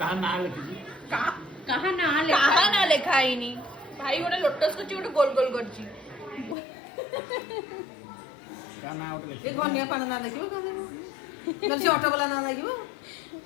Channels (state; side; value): drops out; right; at 6.6 s